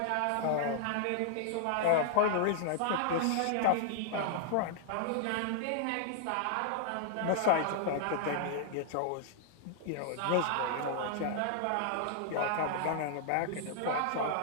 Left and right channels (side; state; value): both; different; correlation -0.01